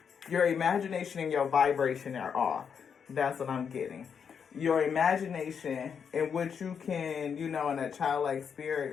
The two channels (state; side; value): quieter; right; 6.9 dB